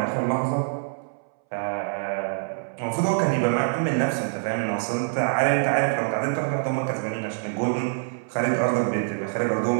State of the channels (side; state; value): left; silent; 62 dB below the other